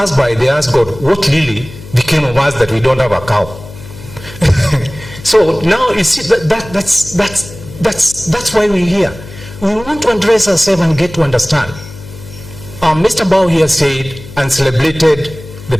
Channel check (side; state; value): left; noise; hum, 16 dB below the sound